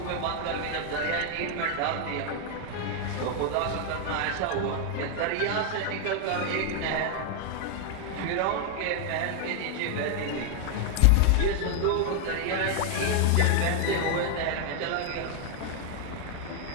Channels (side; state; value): both; different; correlation 0.00